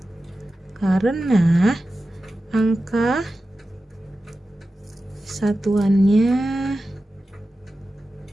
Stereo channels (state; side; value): normal; both; correlation 0.93